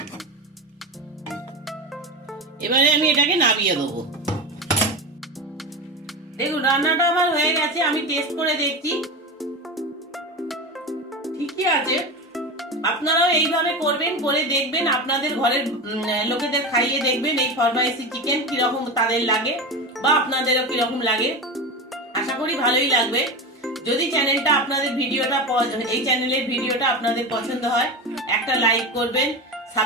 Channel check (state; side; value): normal; both; correlation 0.23